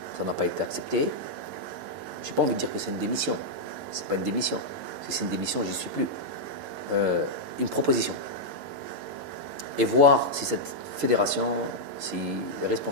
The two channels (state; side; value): late; left; 11 ms